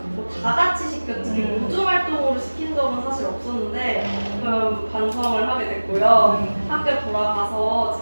다 같이 시켰지 우주 활동으로 시킨 적은 사실 없었는데 반성을 하게 됐고요. 학교 돌아가서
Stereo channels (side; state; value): both; inverted; correlation -1.00